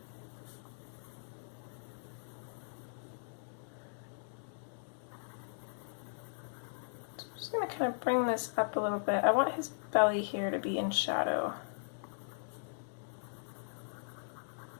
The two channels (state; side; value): silent; right; digital silence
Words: So I'm just going to kind of bring this up a little bit. I want his belly here to be in shadow.